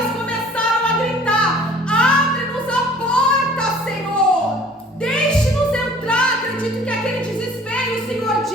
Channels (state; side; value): normal; both; correlation 0.51